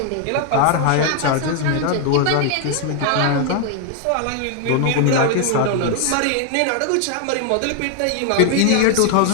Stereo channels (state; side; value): different; both; correlation 0.00